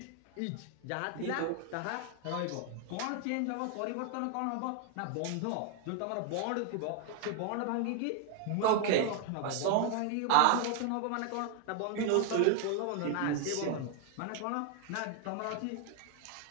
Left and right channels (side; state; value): both; different; correlation 0.00